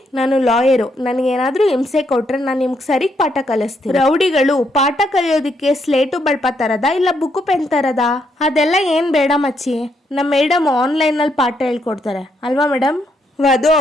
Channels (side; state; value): both; normal; correlation 0.76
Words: ನಾನು ಲಾಯರು, ನನಗೇನಾದ್ರೂ ಹಿಂಸೆ ಕೊಟ್ರೆ ನಾನು ನಿಮ್ಗೆ ಸರಿಗ್ ಪಾಠ ಕಲಿಸ್ತೀನಿ. ರೌಡಿಗಳು, ಪಾಠ ಕಲಿಯೋದಕ್ಕೆ ಸ್ಲೇಟು ಬಳ್ಪ ತರದ ಇಲ್ಲ ಬುಕ್ಕು ಪೆನ್ ತರದ? ಅದೆಲ್ಲ ಏನ್ ಬೇಡ ಮಚ್ಚಿ, ನಮ್ಮ ಮೇಡಮ್ ಆನ್ಲೈನಲ್ಲಿ ಪಾಠ ಹೇಳ್ಕೊಡ್ತಾರೆ ಅಲ್ವಾ ಮೇಡಮ್? ವಧು